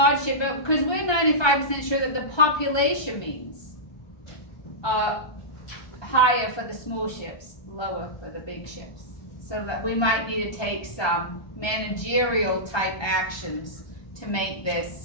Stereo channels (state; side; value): late; right; 1.3 ms